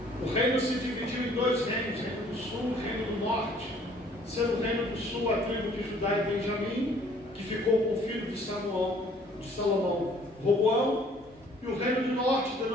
o reino se dividiu em dois reinos, reino do sul e reino do norte. Sendo o reino do sul a tribo de Judá e Benjamim, que ficou com o filho de Salomão, Roboão, e o reino do norte,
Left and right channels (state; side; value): normal; both; correlation 0.58